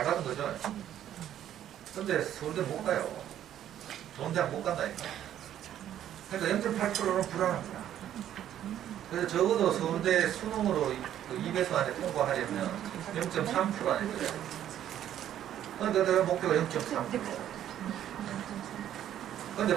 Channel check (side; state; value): left; quieter; 11.1 dB